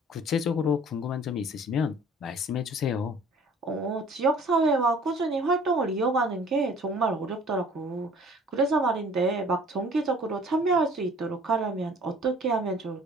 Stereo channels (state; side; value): normal; both; correlation 0.51